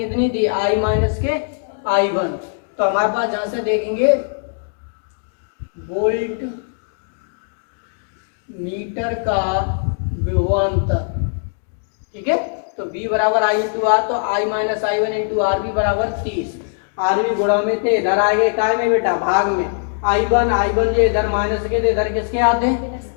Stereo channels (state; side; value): silent; right; digital silence